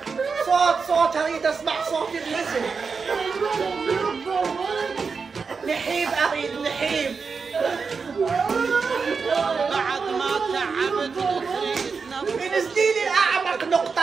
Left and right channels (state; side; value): quieter; left; 5.1 dB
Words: صوت أريد أسمع صوت النسل. نحيب أريد نحيب. بعد ما تعبت تريد انزلي لي اعمق